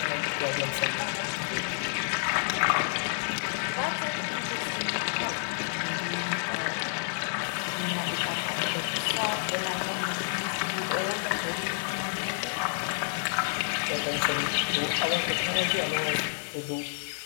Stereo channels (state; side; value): silent; right; 58 dB below the other